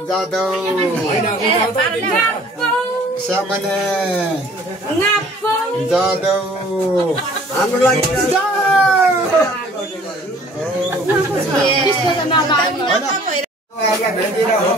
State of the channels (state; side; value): normal; both; correlation 0.53